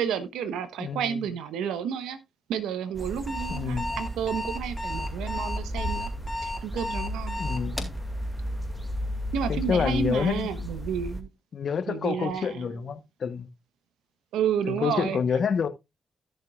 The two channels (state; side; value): normal; both; correlation 0.69